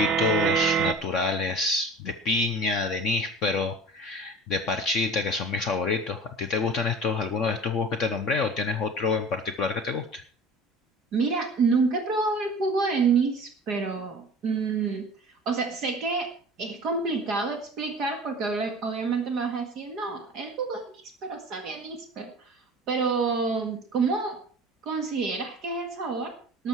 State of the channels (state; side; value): normal; both; correlation 0.39